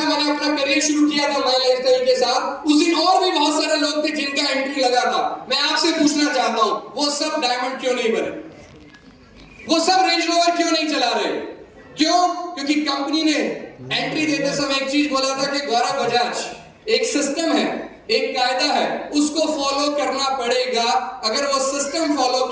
मैंने अपना करियर शुरू किया था माई लाइफस्टाइल के साथ, उस दिन और भी बहुत सारे लोग थे जिनका एंट्री लगा था। मैं आपसे पूछना चाहता हूं, वो सब डायमंड क्यों नहीं बने? वो सब रेंज रोवर क्यों नहीं चला रहे? क्यों? क्योंकि कंपनी ने एंट्री देते समय एक चीज बोला था कि गौरव बजाज एक सिस्टम है, एक कायदा है, उसको फॉलो करना पड़ेगा। अगर वो सिस्टम फॉलो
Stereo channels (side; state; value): both; identical; correlation 1.00